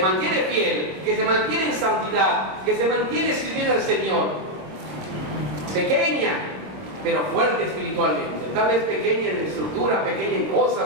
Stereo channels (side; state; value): left; late; 25 ms